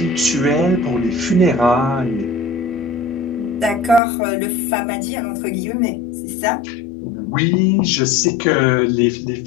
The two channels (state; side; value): drops out; right; at 4.0 s